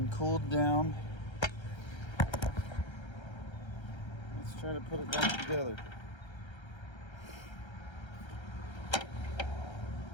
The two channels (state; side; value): late; right; 1.3 ms